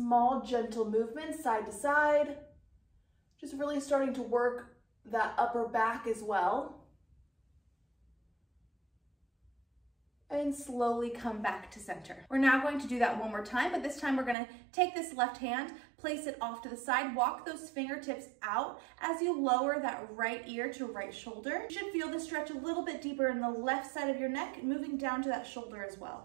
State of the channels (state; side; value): drops out; left; at 14.4 s